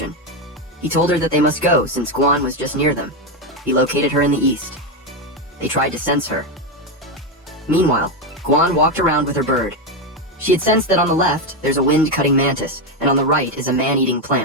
He told her that they must go since Guan was just near them. He located her in the east. They tried to sense her. Meanwhile, Guan walked around with her bird. She had sensed that on the left, there's a wind-cutting mantis, and on the right is a man-eating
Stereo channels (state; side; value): normal; both; correlation 0.08